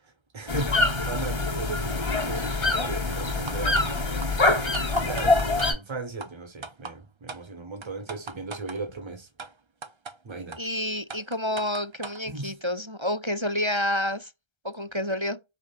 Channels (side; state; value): left; late; 1.3 ms